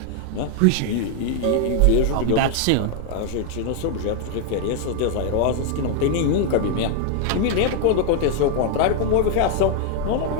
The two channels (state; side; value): different; both; correlation 0.00